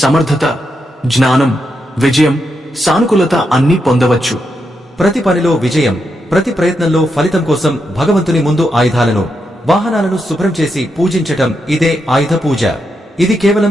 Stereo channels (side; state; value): both; normal; correlation 0.83